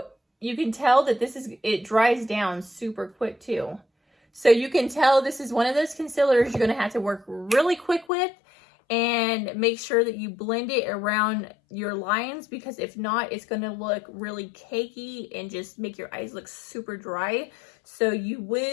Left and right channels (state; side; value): drops out; right; at 8.1 s